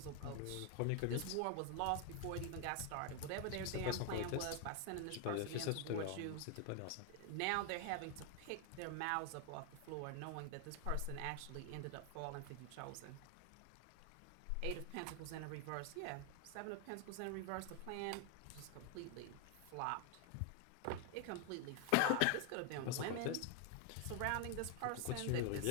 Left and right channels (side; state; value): both; different; correlation 0.00